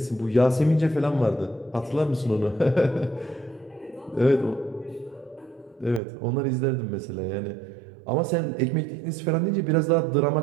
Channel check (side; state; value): left; drops out; at 6.0 s